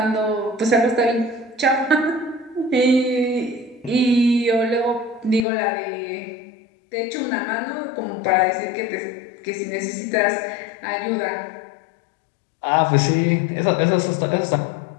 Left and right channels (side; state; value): right; drops out; at 5.5 s